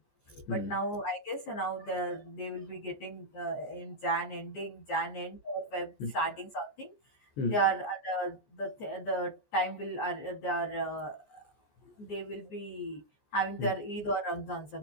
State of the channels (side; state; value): right; late; 14 ms